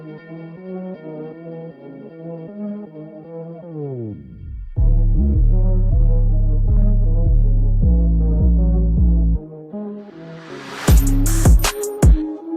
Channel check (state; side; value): identical; both; correlation 1.00